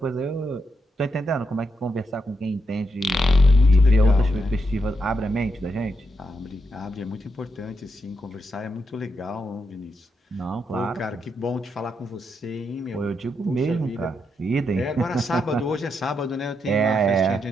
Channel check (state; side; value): normal; both; correlation 0.82